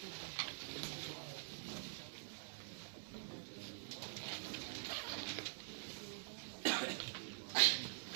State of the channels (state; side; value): silent; left; digital silence